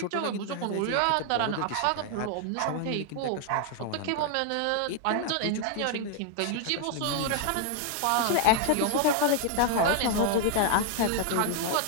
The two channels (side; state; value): both; different; correlation 0.00